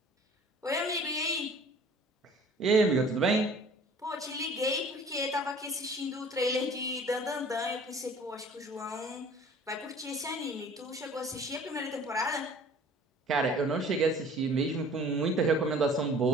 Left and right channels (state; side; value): normal; both; correlation 0.49